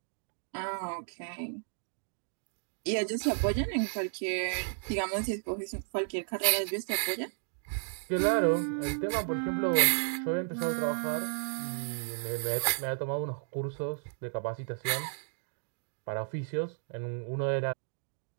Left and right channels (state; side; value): silent; left; digital silence